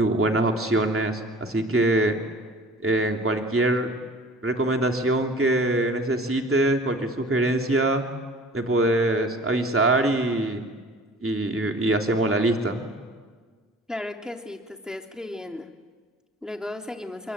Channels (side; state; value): both; normal; correlation 0.45